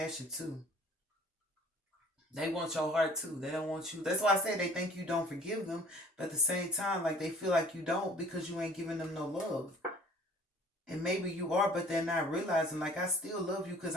too. They want your heart too. They don't want you. That's why I say they think you don't forgive them, but at the same time, like they feel like you don't because you ain't giving them no love. And maybe you are, but they're not realizing. Like I still love you because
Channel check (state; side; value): normal; both; correlation 0.52